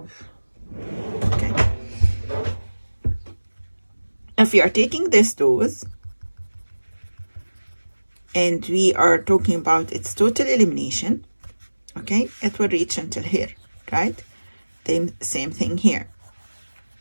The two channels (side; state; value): both; inverted; correlation -1.00